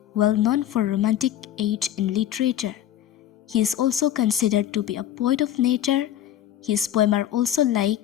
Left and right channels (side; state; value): right; quieter; 11.4 dB